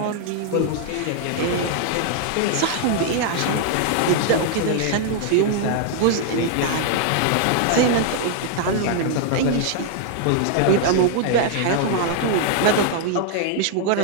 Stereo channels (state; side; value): different; both; correlation 0.00